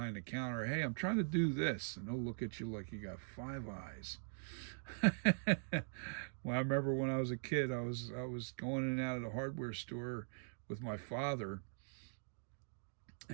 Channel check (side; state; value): left; silent; digital silence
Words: the counter, hey, I'm trying to do this. And they'll look at you like you got five eyes. Well, I remember when I was a kid, I was going in and out of the hardware store with my father,